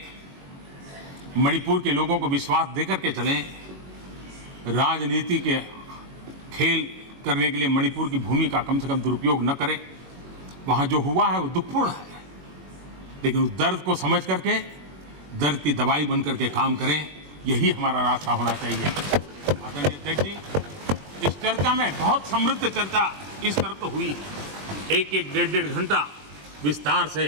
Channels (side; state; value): left; late; 21 ms